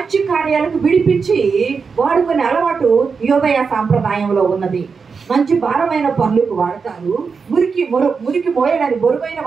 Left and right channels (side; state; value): left; quieter; 5.3 dB